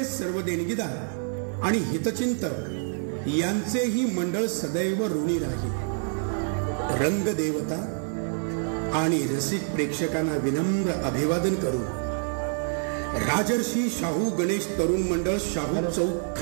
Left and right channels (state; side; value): silent; left; 57 dB below the other